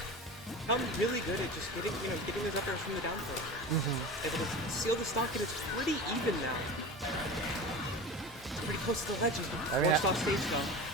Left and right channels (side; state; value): both; normal; correlation 0.31